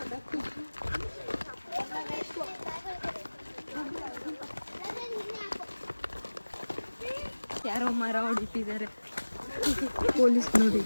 ಯಾರೋ ಮರ ಹೊಡಿತಿದ್ದಾರೆ. ಪೊಲೀಸ್ ನೋಡಿ.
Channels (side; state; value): both; inverted; correlation -1.00